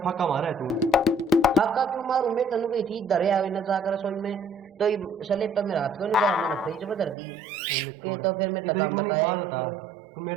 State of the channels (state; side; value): drops out; left; at 7.2 s